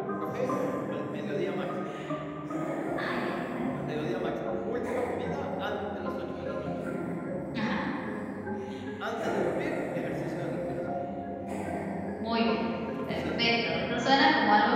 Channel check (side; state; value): both; identical; correlation 1.00